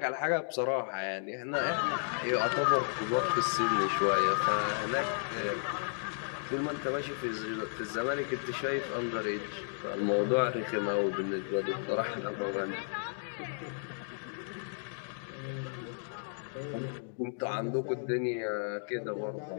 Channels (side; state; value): right; silent; digital silence